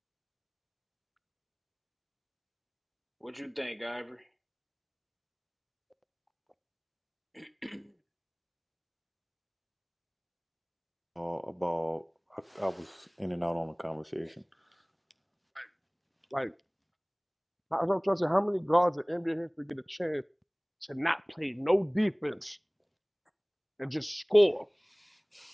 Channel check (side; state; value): both; identical; correlation 1.00